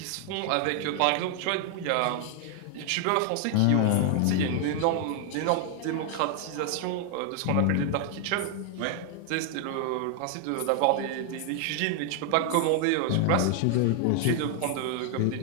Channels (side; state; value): both; different; correlation 0.00